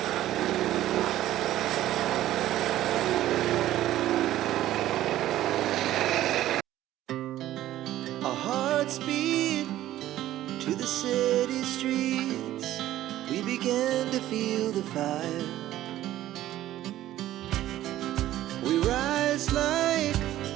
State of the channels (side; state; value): left; quieter; 13.9 dB